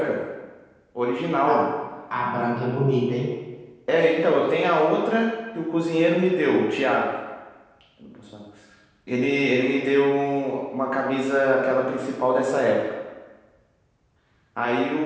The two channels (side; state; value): both; identical; correlation 1.00